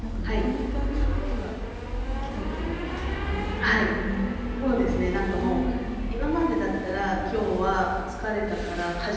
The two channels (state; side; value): identical; both; correlation 1.00